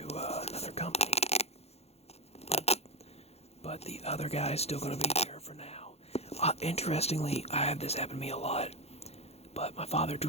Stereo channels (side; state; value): right; late; 0.30 ms